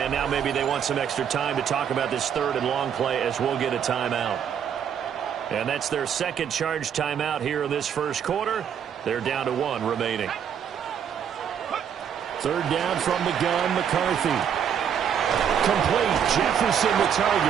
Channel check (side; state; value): left; quieter; 8.3 dB